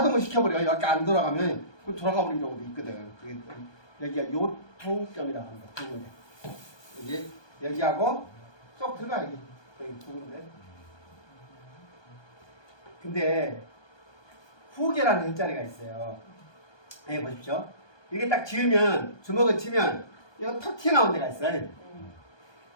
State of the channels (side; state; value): right; late; 1.2 ms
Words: 시켜버려요. 여기 안 돌아가면 그 돌아가버리는 경우도 있거든. 여기가 요통점이라고 합니다. 두 군데. 여기 여기하고 쏙 들어가 여기 두 군데. 근데 후계라는 혈자리가 있어요. 여기 보십시오. 이렇게 딱 지으면 주먹을 치면 이거 턱 튀어나온 데가 있어요.